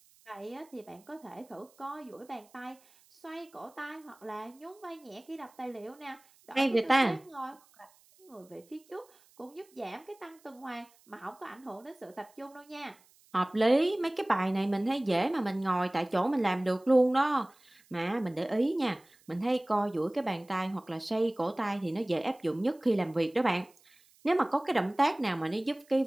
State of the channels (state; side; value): noise; right; hiss, 30 dB below the sound